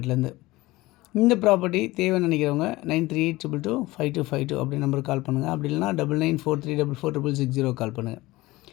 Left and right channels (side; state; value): right; quieter; 19.5 dB